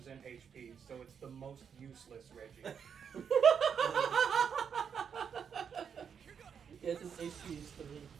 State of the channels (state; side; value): quieter; left; 7.2 dB